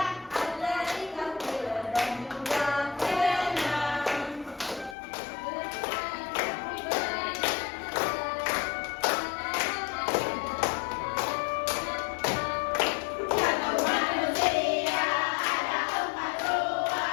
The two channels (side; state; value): right; drops out; at 5.0 s